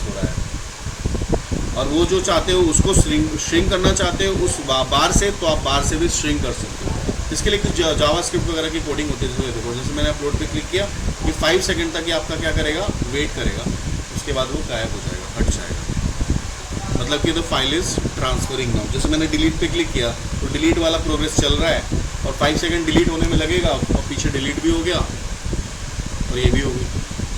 हो रहा है। और वो जो चाहते हो उसको श्रिंक करना चाहते हो उस बार से, तो आप बार से भी श्रिंक कर सकते हो। इसके लिए कुछ जावास्क्रिप्ट वगैरह की कोडिंग होती है। देखो जैसे मैंने अपलोड पे क्लिक किया कि 5 सेकेंड तक ये आपका क्या करेगा, वेट करेगा, उसके बाद वो गायब हो जाएगा, हट जाएगा, मतलब कि the file is transferring now. जैसे मैंने डिलीट पे क्लिक किया तो डिलीट वाला प्रोग्रेस चल रहा है, और 5 सेकेंड डिलीट होने में लगेगा, और पीछे डिलीट भी हो गया और ये भी हो गई।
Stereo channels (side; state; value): both; identical; correlation 1.00